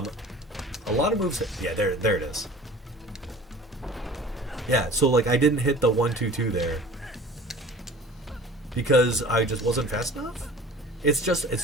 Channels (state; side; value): normal; both; correlation 0.43